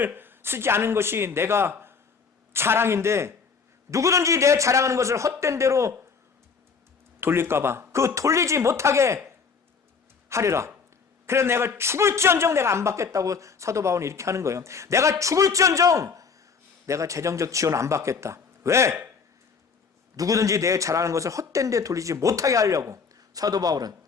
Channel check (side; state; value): right; quieter; 5.5 dB